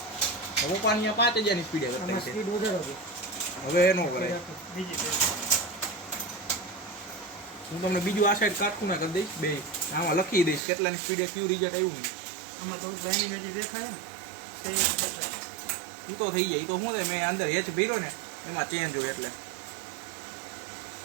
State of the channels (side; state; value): left; drops out; at 10.6 s